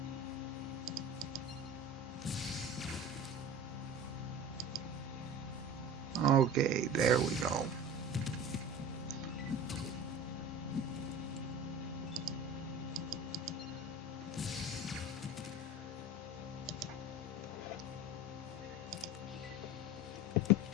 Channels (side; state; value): both; normal; correlation 0.35